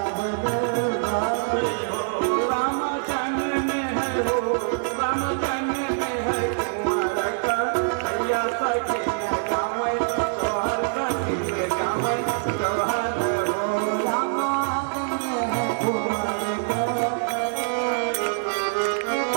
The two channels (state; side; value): silent; left; digital silence